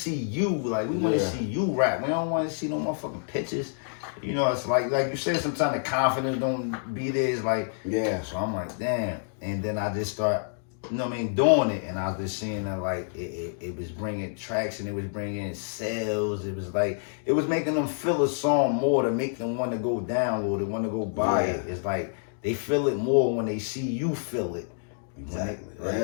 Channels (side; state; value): right; silent; digital silence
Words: you. Like, we want to see you rap. We don't want to see no motherfucking pictures. It's like you said, sometimes the confidence don't be there. It's like, so I'm like, damn. And then I just start you know what I mean, doing it, and I was just seeing that like it was bringing traction, it was bringing sales, it was like it was making them feel a song more to make them want to go download it, want to go buy it. It's like they feel it more when they see you feel it. Exactly. Right?